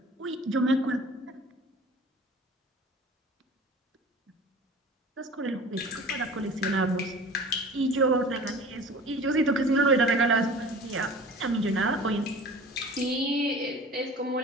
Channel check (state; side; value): normal; both; correlation 0.41